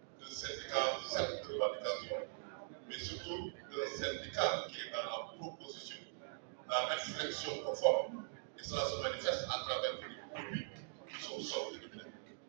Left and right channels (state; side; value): silent; left; digital silence